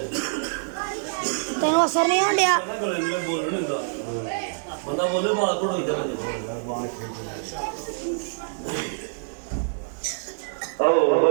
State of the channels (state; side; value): silent; left; digital silence